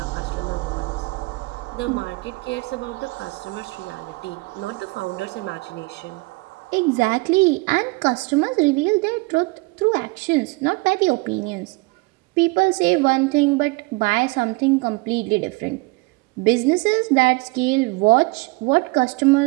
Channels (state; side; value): quieter; left; 26.1 dB